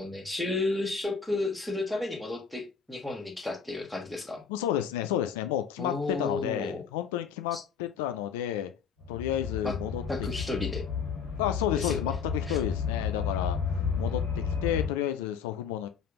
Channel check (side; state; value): right; quieter; 6.4 dB